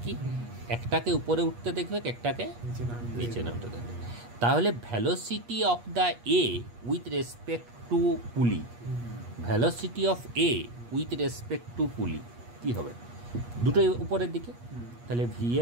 কি একটাকে উপরে উঠতে দেখবে, একটাকে নিচে নামতে দেখবে। তাহলে velocity of the A with respect to pulley, velocity of A with respect to pulley কি হবে? দুটোই উপরের দিকে, তাহলে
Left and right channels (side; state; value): left; late; 8.4 ms